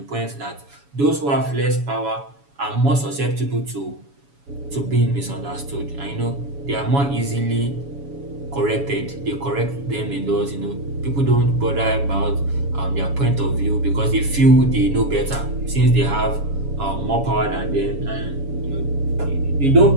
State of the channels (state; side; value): late; left; 7.1 ms